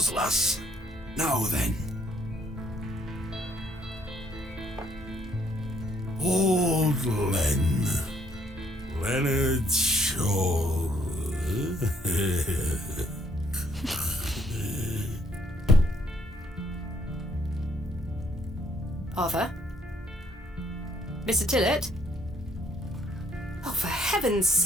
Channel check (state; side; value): normal; both; correlation 0.67